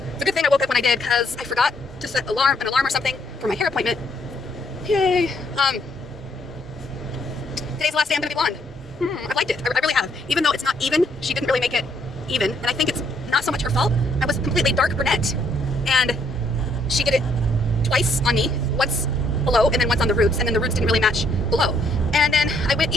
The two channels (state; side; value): normal; both; correlation 0.69